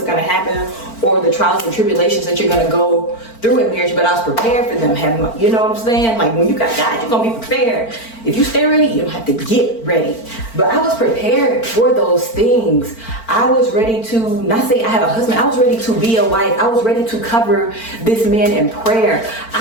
gonna happen or the trials and tribulations that you're gonna go through in marriage, but I was prepared for them. You know what I'm saying? Like when you got God, you're gonna be prepared. If you stay ready, you don't have to get ready. But I was prepared for those things. I was ready to, not say I had a husband, I was ready to be a wife. I was ready to cover this man in prayer.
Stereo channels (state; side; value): late; right; 4.4 ms